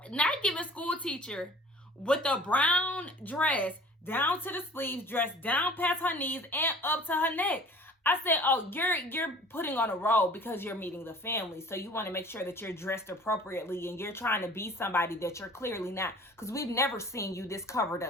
not giving school teacher with a brown dress down to the sleeves, dressed down past her knees and up to her neck. I said, oh, you're putting on a role because you're meeting the family. So you want to make sure that you're dressed appropriately and you're trying to be somebody that you're clearly not. Because we've never seen you this covered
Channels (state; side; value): normal; both; correlation 0.47